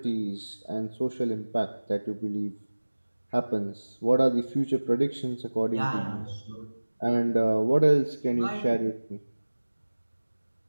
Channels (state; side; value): inverted; both; correlation -1.00